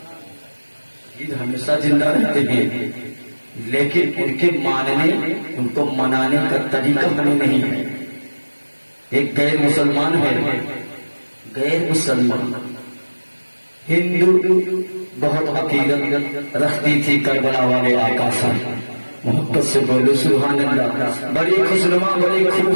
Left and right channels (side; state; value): both; inverted; correlation -1.00